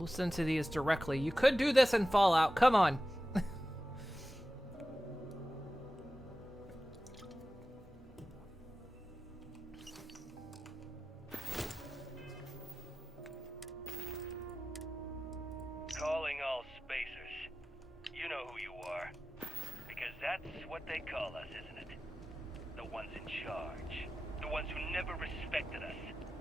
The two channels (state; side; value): normal; both; correlation 0.94